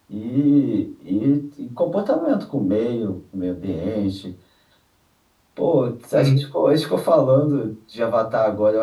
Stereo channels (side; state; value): both; identical; correlation 1.00